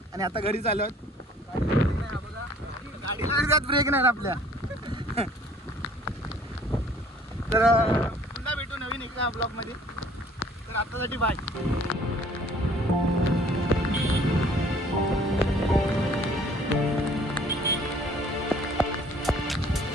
आणि आता घरी चाललो आहोत. गाडीला ब्रेक नाही आपल्या. तर पुन्हा भेटू नवीन एका ब्लॉगमध्ये. तर आतासाठी बाय.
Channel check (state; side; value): normal; both; correlation 0.55